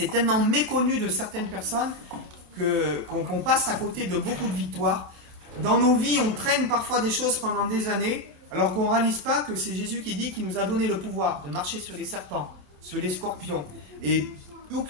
tellement méconnu de certaines personnes qu'on passe à côté de beaucoup de victoires. Dans nos vies, on traîne parfois des choses pendant des années, alors qu'on ne réalise pas que c'est Jésus qui dit qu'il nous a donné le pouvoir de marcher sur les serpents, sur les scorpions. Et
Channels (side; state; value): left; late; 28 ms